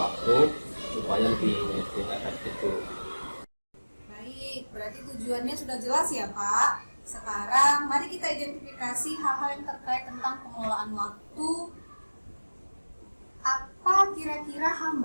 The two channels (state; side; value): inverted; both; correlation -1.00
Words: supaya lebih efektif Bu. Baik, berarti tujuannya sudah jelas ya Pak. Sekarang mari kita identifikasi hal-hal yang terkait tentang pengelolaan waktu. Apa kira-kira